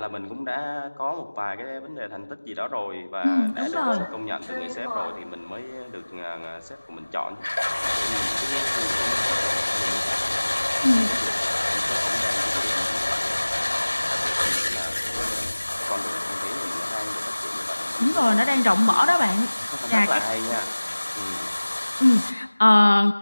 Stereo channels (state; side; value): inverted; both; correlation -1.00